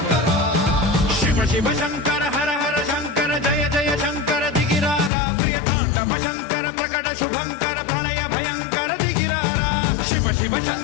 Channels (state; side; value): drops out; right; at 5.1 s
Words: శివ శివ శంకర హర హర శంకర జయ జయ శంకర దిగిరారా ప్రియ తాండవ శంకర ప్రకట శుభంకర ప్రళయ భయంకర దిగిరారా శివ శివ